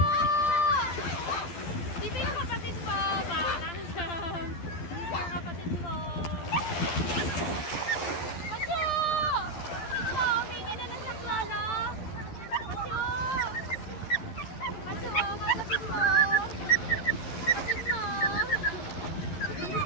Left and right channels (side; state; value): right; late; 12 ms